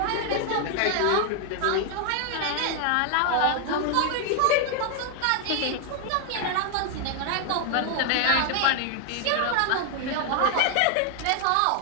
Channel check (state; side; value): different; both; correlation 0.00